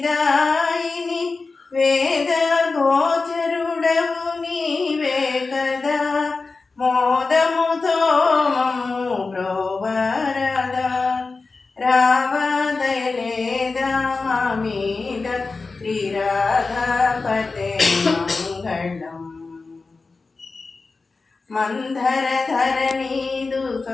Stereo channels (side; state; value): right; quieter; 4.0 dB